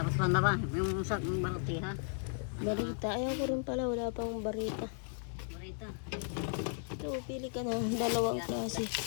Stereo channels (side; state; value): right; silent; 54 dB below the other